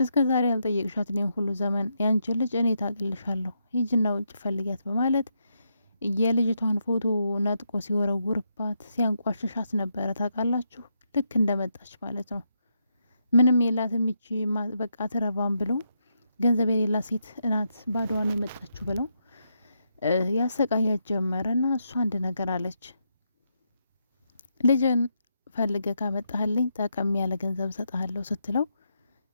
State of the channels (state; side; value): inverted; both; correlation -0.81